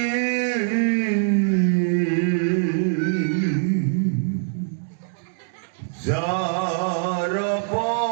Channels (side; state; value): left; silent; 60 dB below the other